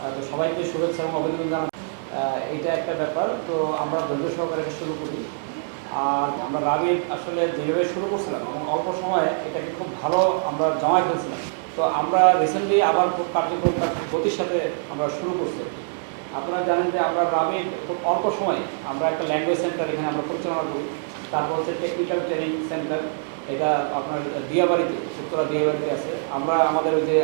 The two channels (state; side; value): silent; left; digital silence